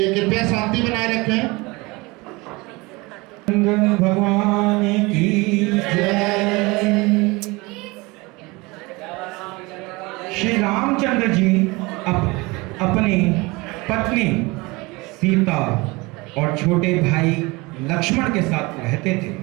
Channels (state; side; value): quieter; left; 24.1 dB